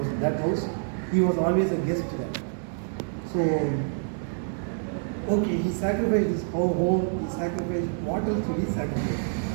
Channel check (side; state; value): left; silent; digital silence